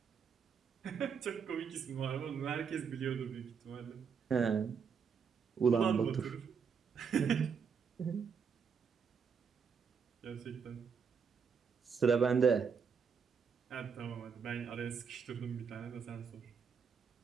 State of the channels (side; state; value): left; quieter; 6.3 dB